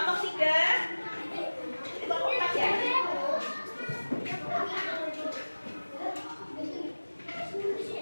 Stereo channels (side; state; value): both; inverted; correlation -1.00